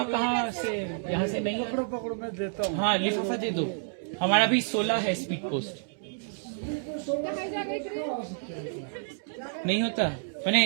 कहाँ से, यहाँ से नहीं है। पकड़ो मैं देता हूँ। हाँ लिफाफा दे दो, हमारा भी 16 है स्पीड पोस्ट। नहीं होता, मैंने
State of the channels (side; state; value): left; silent; digital silence